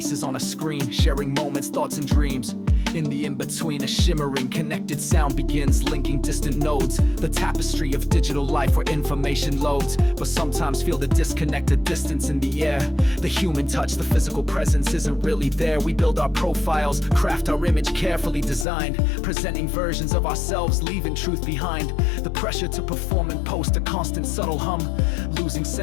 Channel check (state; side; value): drops out; right; at 18.7 s